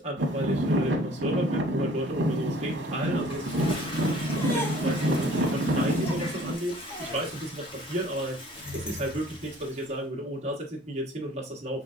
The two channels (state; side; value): normal; both; correlation 0.52